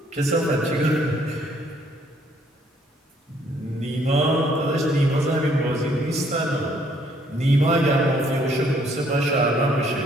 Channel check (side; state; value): both; normal; correlation 0.66